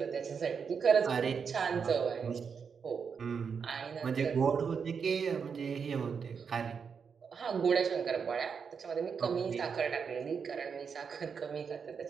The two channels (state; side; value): quieter; left; 6.2 dB